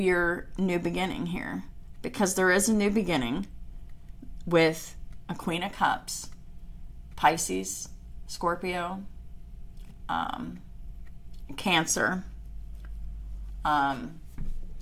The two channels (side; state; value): both; identical; correlation 1.00